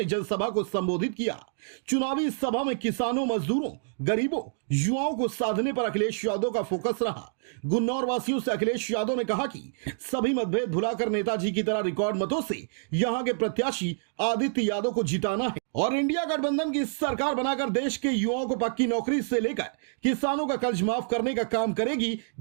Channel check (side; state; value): left; silent; digital silence